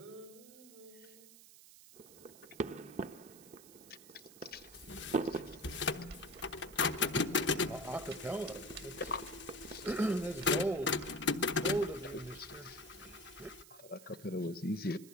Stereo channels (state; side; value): noise; right; hiss, 19 dB below the sound